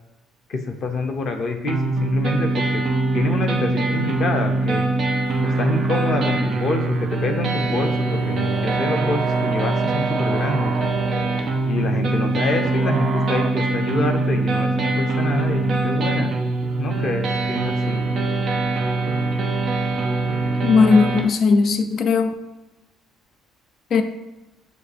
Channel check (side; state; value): both; normal; correlation 0.76